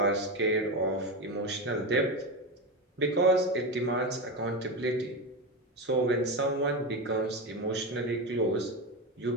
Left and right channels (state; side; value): normal; both; correlation 0.17